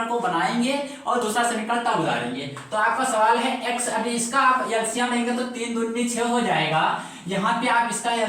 को बनाएंगे और दूसरा समीकरण तब उतारेंगे। तो आपका सवाल है x, अभी इसका आप एलसीएम लेंगे तो 3 दूनी 6 हो जाएगा। यहाँ पे आप इसका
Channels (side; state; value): both; identical; correlation 1.00